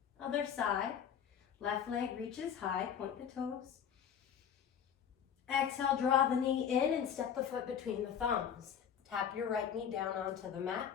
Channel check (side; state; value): right; quieter; 8.3 dB